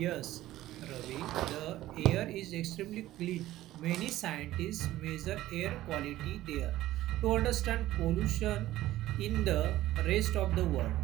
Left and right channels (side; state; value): left; quieter; 15.2 dB